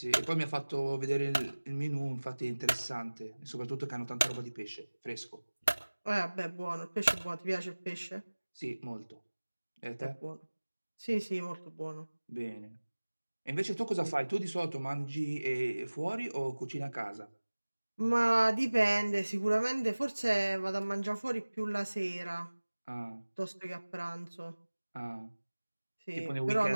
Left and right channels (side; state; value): both; inverted; correlation -1.00